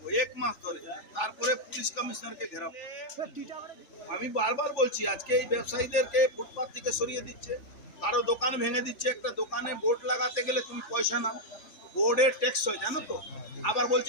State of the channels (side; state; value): right; late; 3.5 ms